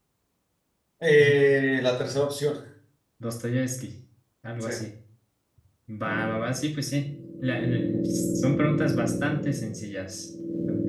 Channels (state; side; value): identical; both; correlation 1.00